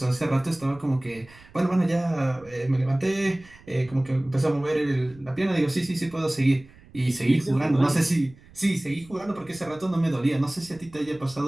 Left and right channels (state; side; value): noise; right; rumble, 24 dB below the sound